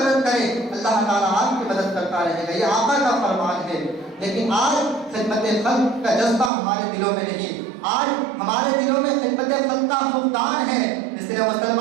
کریں، اللہ تعالیٰ آپ کی مدد کرتا رہے گا، یہ آقا کا فرمان ہے۔ لیکن آج خدمت خلق کا جذبہ ہمارے دلوں میں نہیں، آج ہمارے دلوں میں خدمت خلق کا فقدان ہے۔ اس لیے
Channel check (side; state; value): left; drops out; at 6.5 s